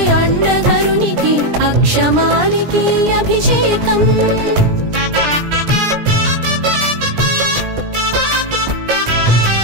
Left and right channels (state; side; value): late; left; 17 ms